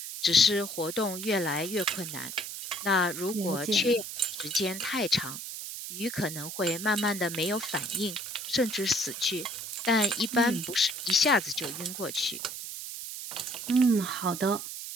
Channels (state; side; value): noise; right; hiss, 8 dB below the sound